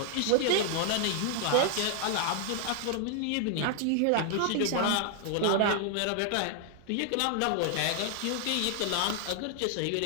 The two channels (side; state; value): both; different; correlation 0.00